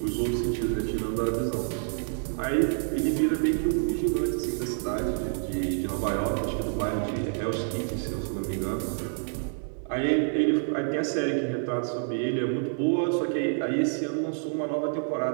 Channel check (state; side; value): silent; left; digital silence